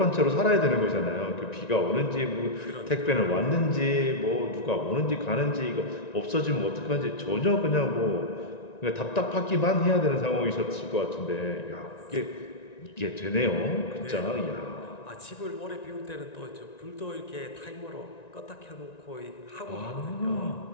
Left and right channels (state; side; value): late; right; 1.9 ms